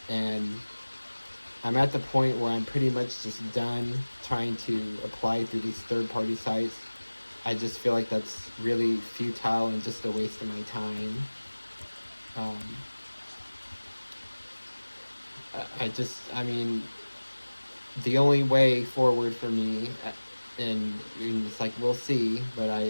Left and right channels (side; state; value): both; inverted; correlation -1.00